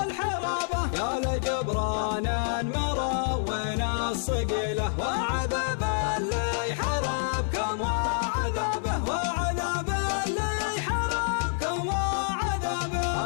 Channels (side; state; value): right; silent; 57 dB below the other